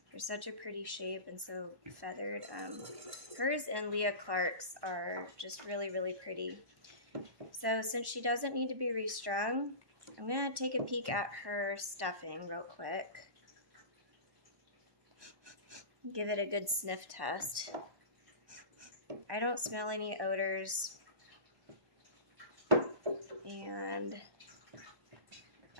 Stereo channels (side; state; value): left; late; 1.1 ms